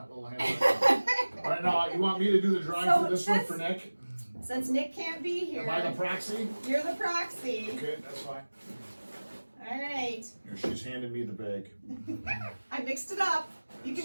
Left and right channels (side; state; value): both; inverted; correlation -1.00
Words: little hands right now. All right, now you want me to do the drawing So for this one since- for Nick? Since Nick can't be here, Am I the proxy? you're the proxy. Okay, that's fine. All right. Here, she's handing me the bag. I mixed it up. You